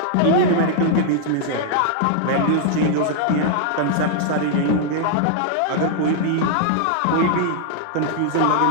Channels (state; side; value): different; both; correlation -0.01